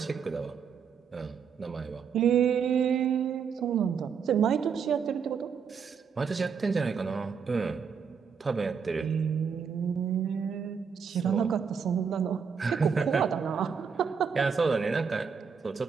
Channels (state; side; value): quieter; left; 6.4 dB